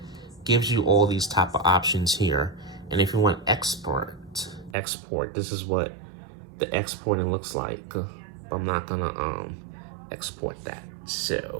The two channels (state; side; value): drops out; left; at 4.8 s